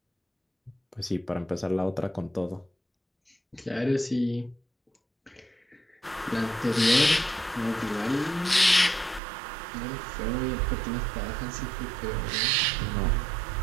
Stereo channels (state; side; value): drops out; left; at 9.2 s